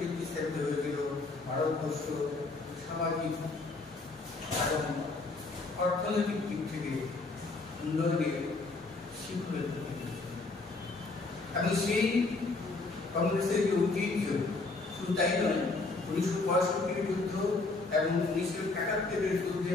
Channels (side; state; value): right; quieter; 3.5 dB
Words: ভিত্তি স্থাপিত হয়েছিল। ভারতবর্ষ সামাজিক এবং অর্থনৈতিক দিক থেকে উন্নয়নের শিখরে এবং সেই কংগ্রেসের যে ঐতিহ্য শুধু তাই নয়, 1965 যুদ্ধ এবং 1971 যুদ্ধে